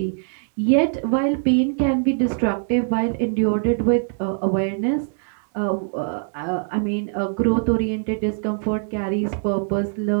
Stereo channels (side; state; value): left; silent; 62 dB below the other